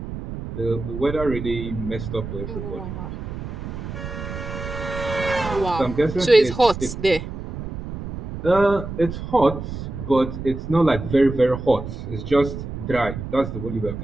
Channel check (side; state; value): right; noise; rumble, 8 dB below the sound